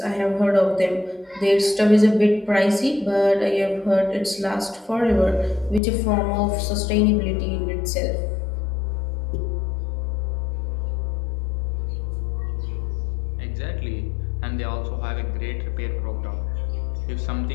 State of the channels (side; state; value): right; drops out; at 5.8 s